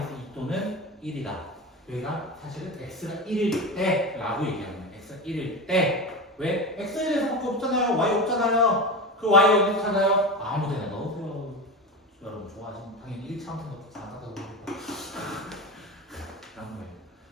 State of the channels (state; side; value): normal; both; correlation 0.23